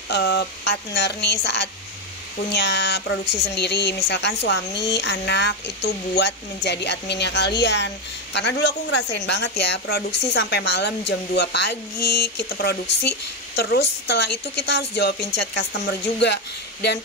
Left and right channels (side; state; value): both; normal; correlation 0.07